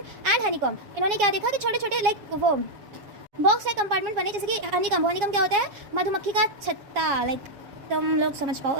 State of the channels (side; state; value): left; late; 7.3 ms